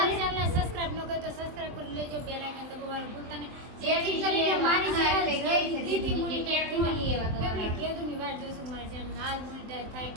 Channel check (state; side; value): late; left; 23 ms